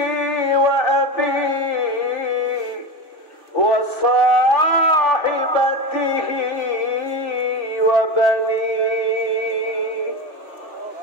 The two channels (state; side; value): late; right; 2.6 ms